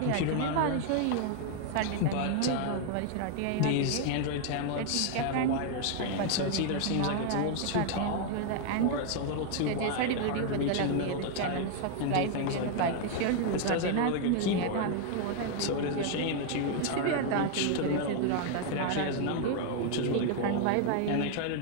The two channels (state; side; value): different; both; correlation 0.00